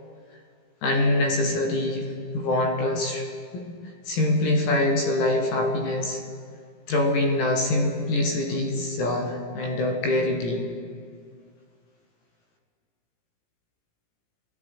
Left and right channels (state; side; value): late; right; 17 ms